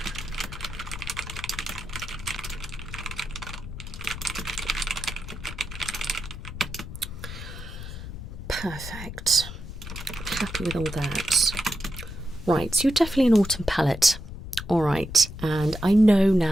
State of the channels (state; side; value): noise; left; rumble, 10 dB below the sound